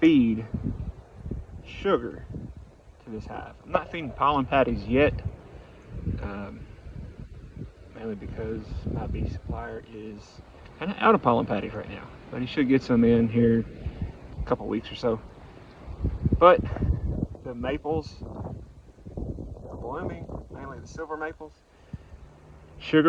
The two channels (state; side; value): identical; both; correlation 1.00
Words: sugar to this hive. I'm not feeding pollen patties yet, mainly because my bee supplier is kind of out of pollen patties right now, but he should get some in here a couple weeks or so. But the maples are blooming, mainly the silver maples.